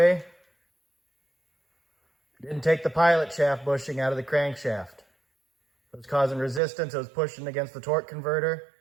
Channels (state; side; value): drops out; left; at 6.6 s